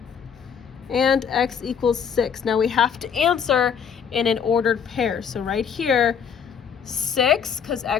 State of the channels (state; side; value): quieter; right; 7.2 dB